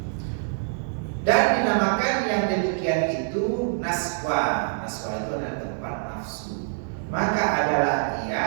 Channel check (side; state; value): left; silent; digital silence